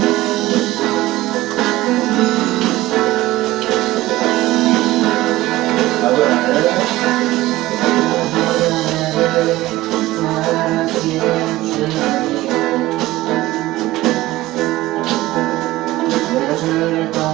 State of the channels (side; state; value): left; quieter; 17.3 dB